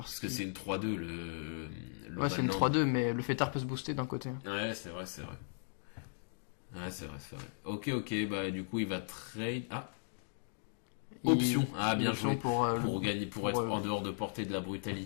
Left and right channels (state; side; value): silent; right; digital silence